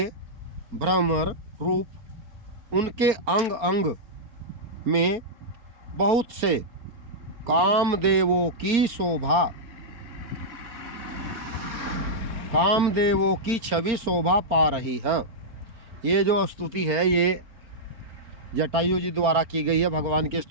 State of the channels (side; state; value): left; late; 4.3 ms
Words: भ्रमर रूप, उनके अंग अंग में बहुत से कामदेवों की शोभा, कामदेवों की छवि शोभा पा रही है। ये जो स्तुति है ये जटायु जी द्वारा की गई है, भगवान की